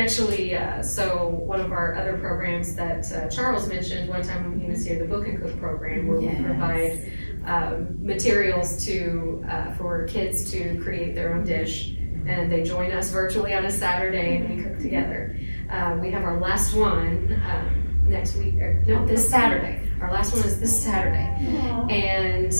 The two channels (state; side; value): inverted; both; correlation -1.00